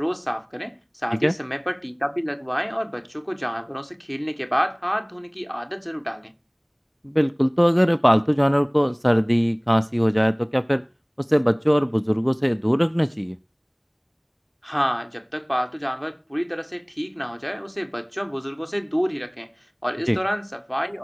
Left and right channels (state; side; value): identical; both; correlation 1.00